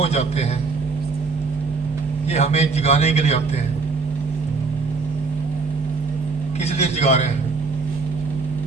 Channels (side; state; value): left; quieter; 4.3 dB